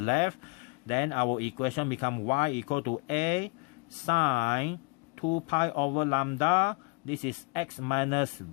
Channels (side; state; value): right; quieter; 32.5 dB